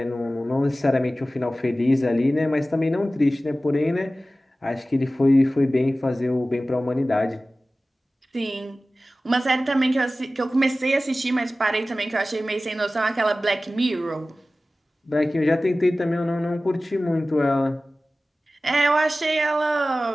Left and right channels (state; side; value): normal; both; correlation 0.96